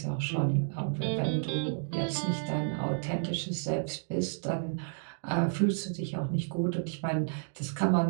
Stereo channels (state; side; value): silent; left; digital silence